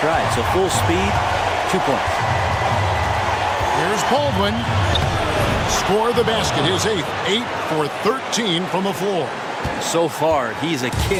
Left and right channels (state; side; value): identical; both; correlation 1.00